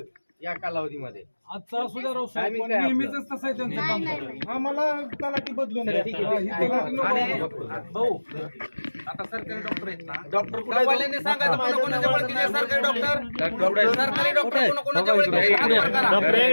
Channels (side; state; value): both; inverted; correlation -1.00